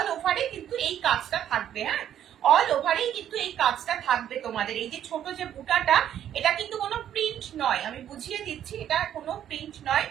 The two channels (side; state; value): left; quieter; 10.5 dB